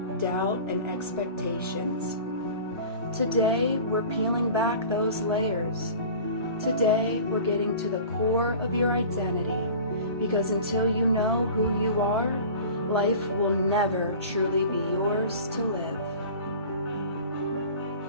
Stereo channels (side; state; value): both; inverted; correlation -0.40